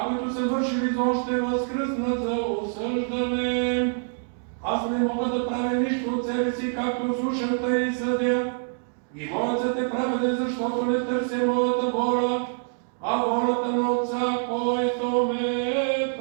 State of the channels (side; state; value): left; silent; digital silence